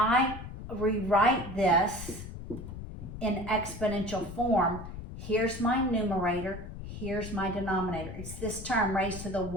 rewrite this in exponential form, here's my numerator, here's my denominator. It's this term raised to the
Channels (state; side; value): noise; left; rumble, 10 dB below the sound